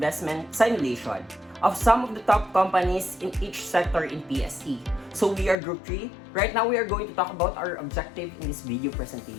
simulation of some of the top companies in each sector in PSE. So we are Group 3. Right now we are going to talk about our objective in this video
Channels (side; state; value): right; drops out; at 5.6 s